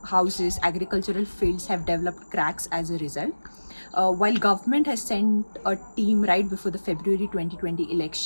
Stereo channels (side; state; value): both; inverted; correlation -1.00